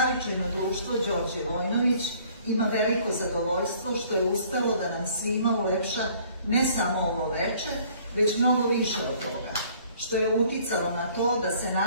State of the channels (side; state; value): both; inverted; correlation -0.57